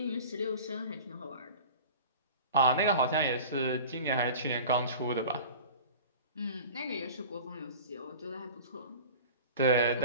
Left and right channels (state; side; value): inverted; both; correlation -0.39